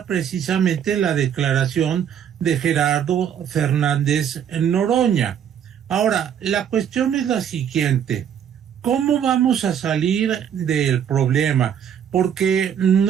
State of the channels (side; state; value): left; quieter; 8.8 dB